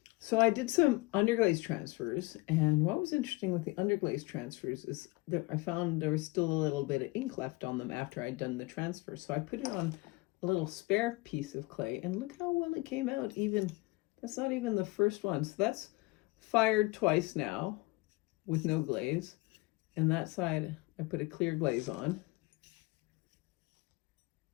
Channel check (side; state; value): right; quieter; 23.4 dB